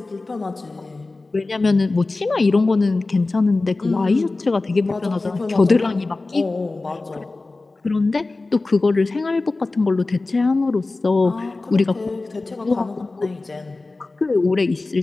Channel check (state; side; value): quieter; right; 3.4 dB